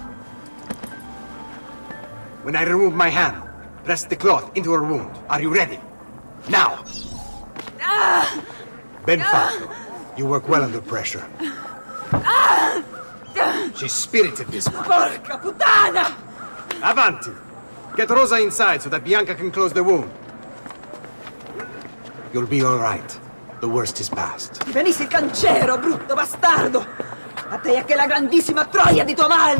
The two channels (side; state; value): both; inverted; correlation -1.00